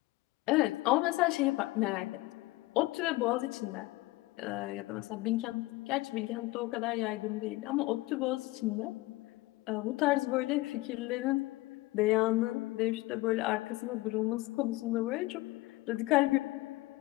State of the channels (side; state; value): right; quieter; 20.0 dB